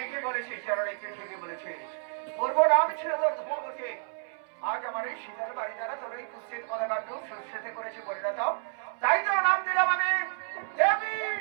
বলেছিস জননী, তুই ঠিকই বলেছিস। পূর্ব নাম ছিল তোর ধূমাবতী। আজ আমার এই শীতের বাড়ি দ্বারা তোর এই কুৎসিত পদাকাণ্ড সুস্থিতি করেছে পরিণত। তাই তোর নাম দিলাম আমি দেবী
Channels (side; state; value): left; silent; 58 dB below the other